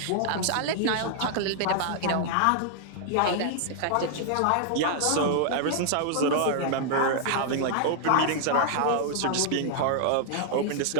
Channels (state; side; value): different; both; correlation -0.01